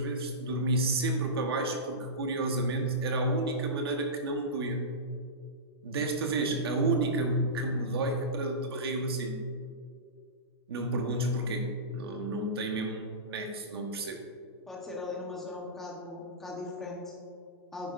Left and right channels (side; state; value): both; normal; correlation -0.20